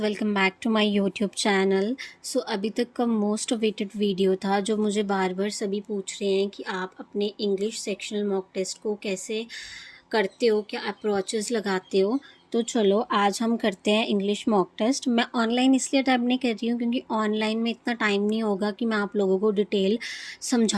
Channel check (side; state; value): both; identical; correlation 1.00